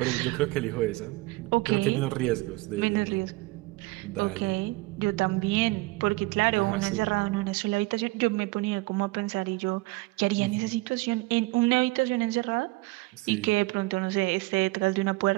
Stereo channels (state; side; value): quieter; left; 22.1 dB